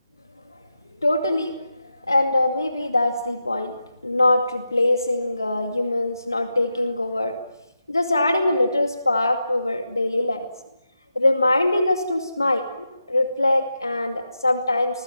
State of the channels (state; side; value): inverted; both; correlation -0.88